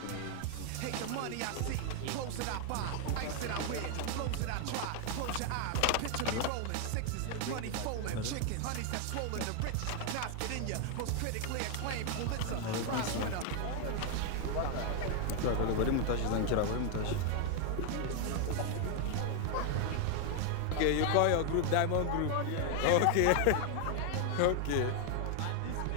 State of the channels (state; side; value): different; both; correlation 0.00